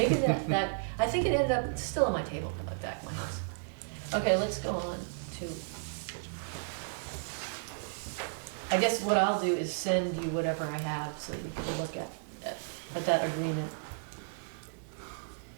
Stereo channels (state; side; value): silent; left; digital silence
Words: that, I think it ended up, it's still on my table back of my house. Okay, let's go on to, I guess what I'll do is send you whatever I have so that you can look at that agreement.